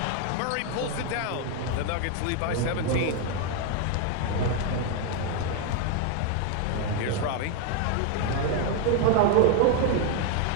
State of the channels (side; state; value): both; different; correlation 0.01